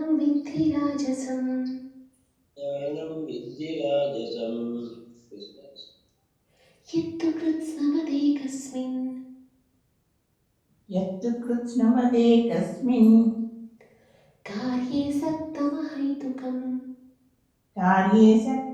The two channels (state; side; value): identical; both; correlation 1.00